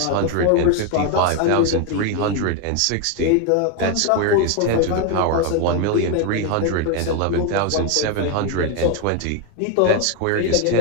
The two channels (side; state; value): both; different; correlation 0.02